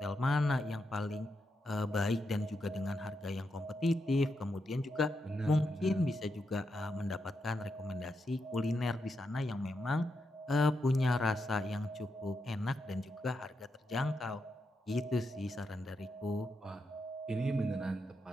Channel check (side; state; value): both; normal; correlation 0.84